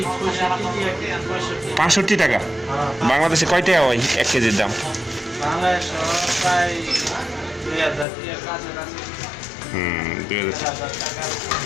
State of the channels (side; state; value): right; drops out; at 8.1 s